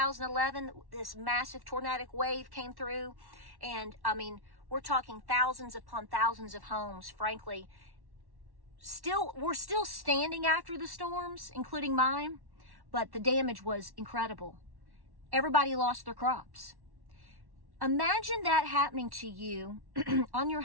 this massive tornadic wave came through. And I mean, we're talking thousands upon thousands of homes, frankly. We're still standing after the storms, including mine, but the damage was incredible. Everybody lost their crops. Imagine that happening to you on your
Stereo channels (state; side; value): late; left; 1.1 ms